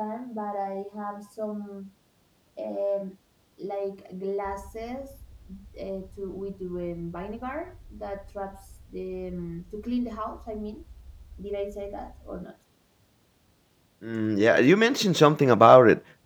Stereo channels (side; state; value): both; identical; correlation 1.00